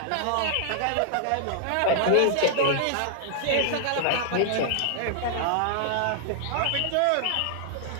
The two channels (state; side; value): different; both; correlation -0.01